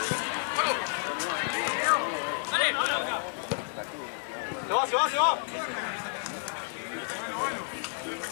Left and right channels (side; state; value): right; silent; digital silence